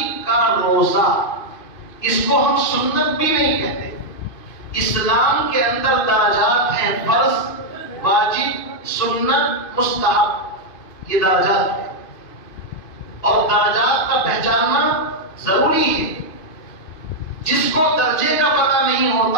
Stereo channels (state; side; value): late; right; 2.5 ms